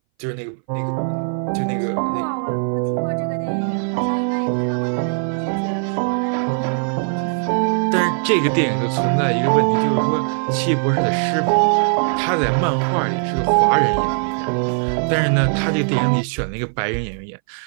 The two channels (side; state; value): left; silent; 61 dB below the other